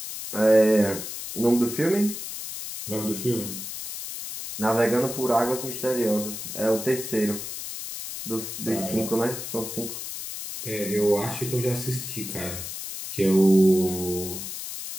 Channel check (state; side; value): noise; left; hiss, 8 dB below the sound